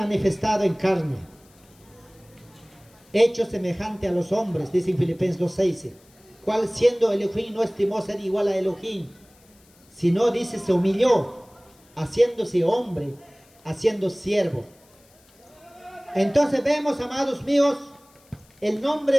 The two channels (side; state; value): left; noise; hiss, 30 dB below the sound